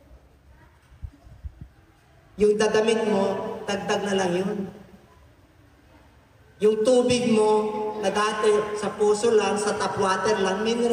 Yung dadamit mo, dagdag na lang yun. Yung tubig mo, na dati sa puso lang, sa tap water lang,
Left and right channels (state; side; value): identical; both; correlation 1.00